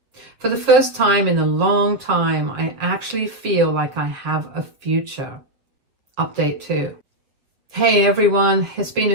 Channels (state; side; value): late; left; 7.1 ms